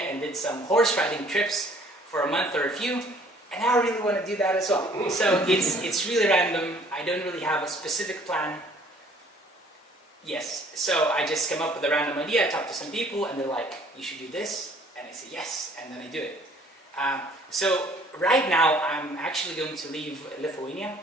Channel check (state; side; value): normal; both; correlation 0.57